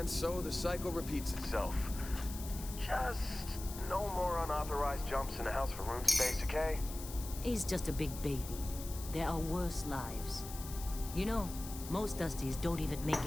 so the cycle repeats itself. Just no more unauthorized jumps in the house for room space, okay? He's just a big baby. There are worse lives. You know, most Dusties don't even make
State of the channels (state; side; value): noise; left; hiss, 12 dB below the sound